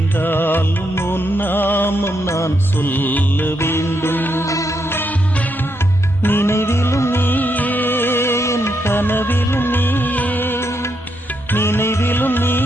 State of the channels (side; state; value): both; normal; correlation 0.80